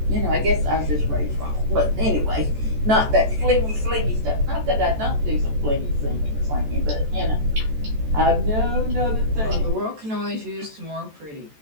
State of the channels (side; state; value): left; late; 14 ms